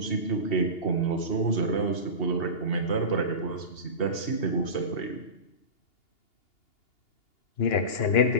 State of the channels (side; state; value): right; late; 2.8 ms